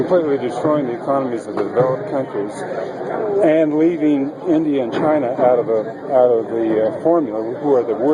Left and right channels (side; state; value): both; identical; correlation 1.00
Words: destroying the economies of the developed countries and leaving India and China out of the formula, who are the